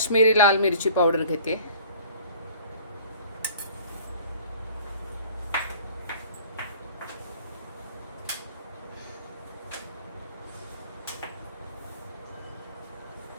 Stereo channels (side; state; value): both; inverted; correlation -0.48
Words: लाल मिरची पावडर घेते,